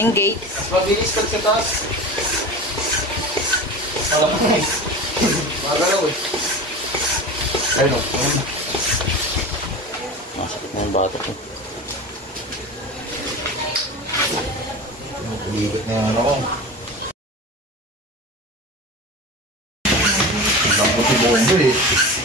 gate. Mabilis pag sa taas. Magalaw eh. Ayun o. Masakit na yung batok ko. Uliwit na yung ano ko. Ang puti bomba eh.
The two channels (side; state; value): both; normal; correlation 0.31